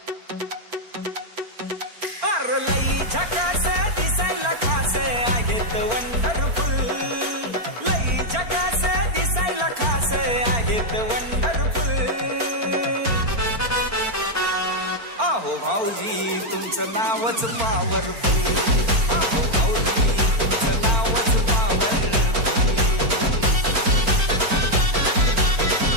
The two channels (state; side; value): late; left; 4.4 ms